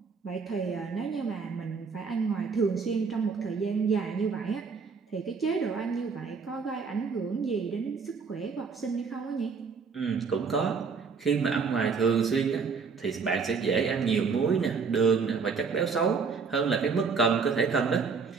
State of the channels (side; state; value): left; quieter; 5.3 dB